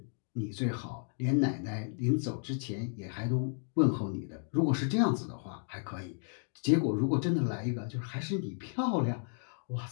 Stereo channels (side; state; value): right; silent; 56 dB below the other